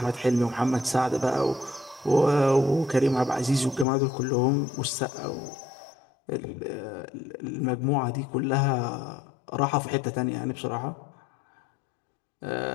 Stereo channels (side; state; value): right; drops out; at 3.9 s